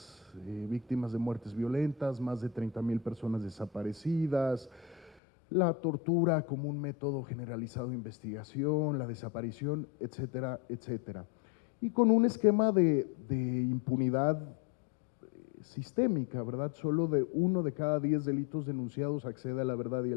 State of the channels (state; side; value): drops out; right; at 5.2 s